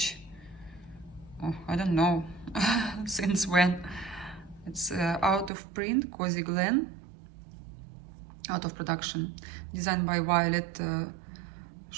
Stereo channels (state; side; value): drops out; left; at 5.5 s